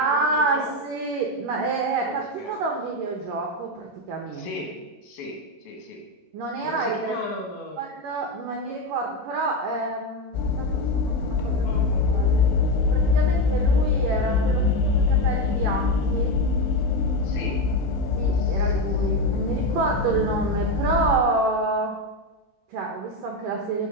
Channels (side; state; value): both; normal; correlation 0.12